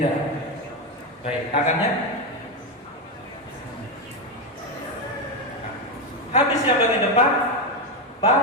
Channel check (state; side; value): normal; both; correlation 0.09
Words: Baik, tangannya. Habis yang bagian depan,